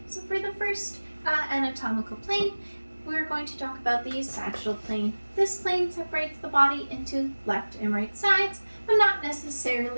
So for the first anatomical plane, we're going to talk about the sagittal plane. This plane separates the body into left and right sides, but not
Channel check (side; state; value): both; inverted; correlation -1.00